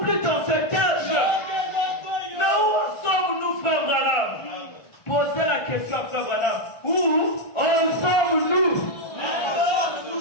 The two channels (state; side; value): late; right; 1.4 ms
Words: dans ce cage. Mais où sommes-nous, frère Branham? Posez la question, frère Branham. Où sommes-nous?